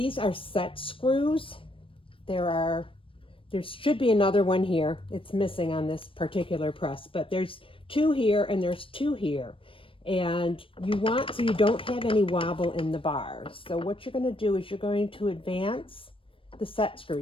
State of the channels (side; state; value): right; late; 0.25 ms